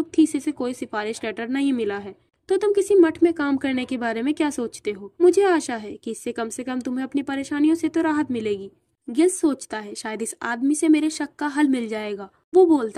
थीसे से कोई सिफारिश लेटर नहीं मिला है तो तुम किसी मठ में काम करने के बारे में क्या सोचते हो? मुझे आशा है कि इससे कम से कम तुम्हें अपनी परेशानियों से तो राहत मिलेगी। गिल्स सोचता है, शायद इस आदमी से मेरे शक का हल मिल जाएगा। वो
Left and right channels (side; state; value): both; identical; correlation 1.00